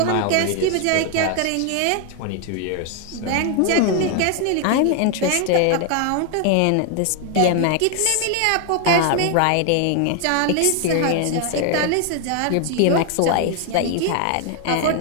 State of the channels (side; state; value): both; different; correlation 0.01